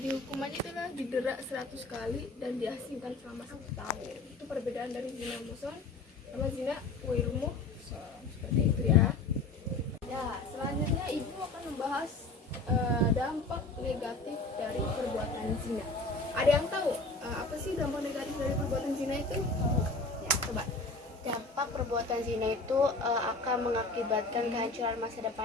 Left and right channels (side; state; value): right; quieter; 3.4 dB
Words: itulah didera 100 kali dan diasingkan selama 1 tahun. Itu perbedaan dari zina muhsan sama zina ghairu muhsan, seperti itu ya. Ya, selanjutnya ibu akan membahas dampak negatif dari perbuatan zina. Ada yang tahu apa sih dampak negatif dari perbuatan zina itu? Ya, coba. Dampak perbuatan zina itu akan mengakibatkan kehancuran masa